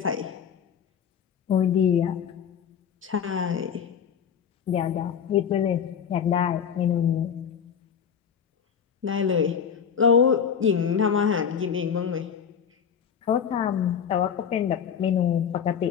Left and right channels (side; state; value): right; quieter; 7.6 dB